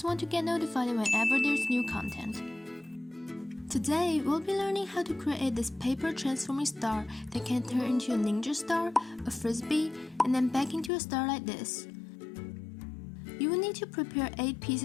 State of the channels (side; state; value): right; drops out; at 10.9 s